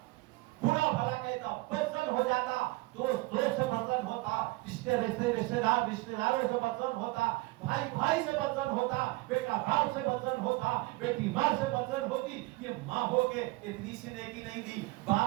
برا بھلا کہتا, بدزن ہو جاتا, دوست سے بدزن ہوتا, رشتہ داروں سے بدزن ہوتا, بھائی سے بدزن ہوتا, بیٹا باپ سے بدزن ہوتا, بیٹی ماں سے بدزن ہوتی. یہ ماں ہو کے اتنی سی نیکی نہیں دی,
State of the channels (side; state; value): left; quieter; 22.2 dB